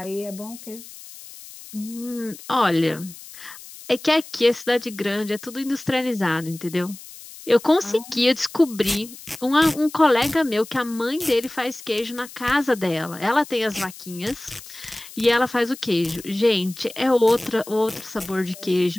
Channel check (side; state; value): left; noise; hiss, 17 dB below the sound